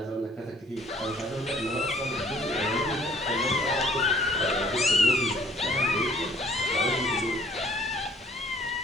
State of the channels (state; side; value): normal; both; correlation 0.58